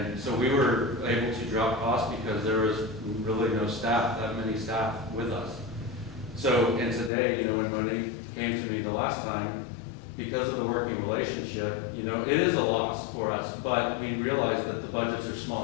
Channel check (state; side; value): drops out; right; at 7.1 s